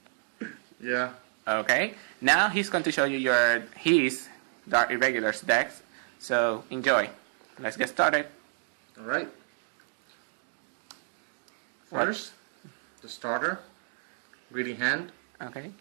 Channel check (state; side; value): silent; left; digital silence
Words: Yeah. Okay, now he's going to show you his Dark Irregulars decks. So enjoy. Let's get started. Alright. First, the starter. Greedy Hand. Okay.